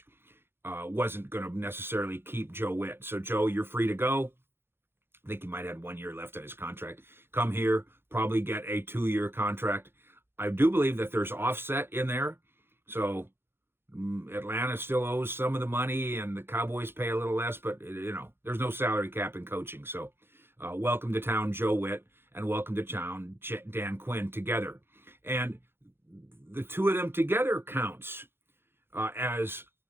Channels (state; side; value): late; left; 0.11 ms